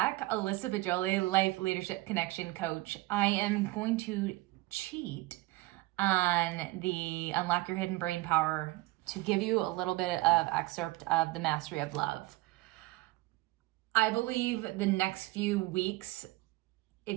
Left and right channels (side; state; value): left; quieter; 20.0 dB